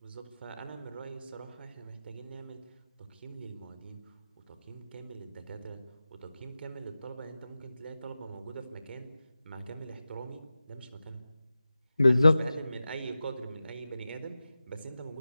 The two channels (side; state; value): both; inverted; correlation -0.93